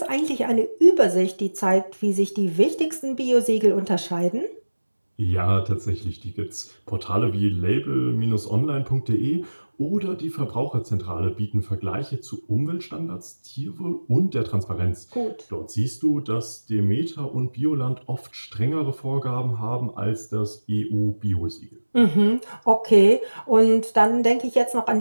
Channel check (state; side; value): inverted; both; correlation -1.00